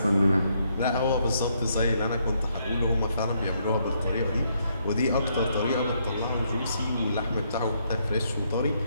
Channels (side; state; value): both; inverted; correlation -0.74